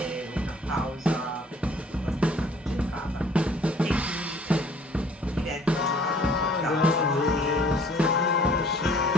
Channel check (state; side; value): normal; both; correlation 0.55